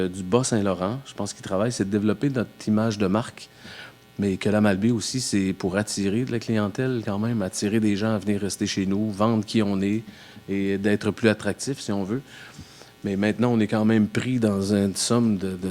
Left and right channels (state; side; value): identical; both; correlation 1.00